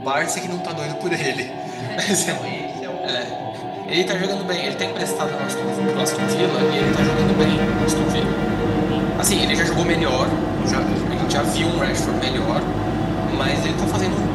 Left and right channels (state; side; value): identical; both; correlation 1.00